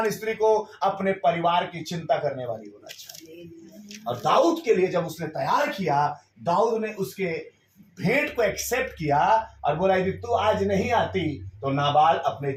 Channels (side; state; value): both; identical; correlation 1.00